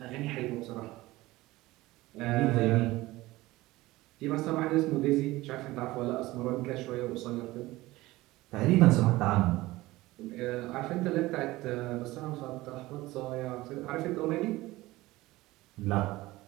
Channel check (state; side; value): quieter; left; 18.8 dB